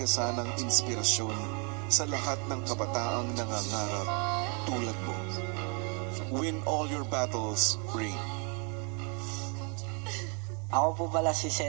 sanang inspirasyon sa lahat ng kabataang nangangarap tulad mo. Win all your battles, Rain. Ako po pala si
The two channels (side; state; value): left; quieter; 36.8 dB